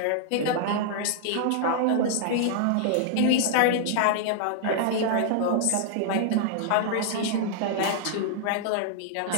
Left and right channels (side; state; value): both; different; correlation -0.01